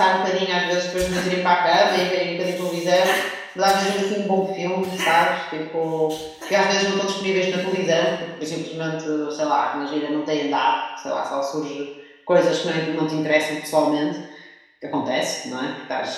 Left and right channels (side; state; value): both; identical; correlation 1.00